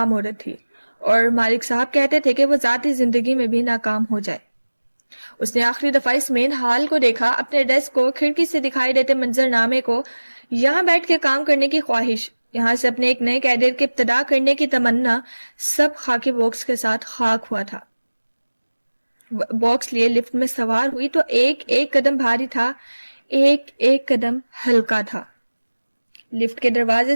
عورت تھی اور مالک صاحب کہتے تھے کہ وہ ذاتی زندگی میں بھی ناکام ہو جائے. اس نے آخری دفعہ اس مین ہال کو دیکھا, اپنے ڈیسک کو, کھڑکی سے دکھائی دیتے منظر نامے کو. یہاں بیٹھ کے کام کرنے کی خواہش، یہاں سے اپنے ایک نئے کیریئر کی ابتدا کرنے کی تمنا، سب خاکی باکس کے ساتھ خاک ہوا تھا۔ باکس لیے لفٹ میں سوار ہوئی تو ایک ایک قدم بھاری تھا، ایک ایک قدم ہلکا تھا۔ لفٹ کے دروازے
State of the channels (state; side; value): inverted; both; correlation -1.00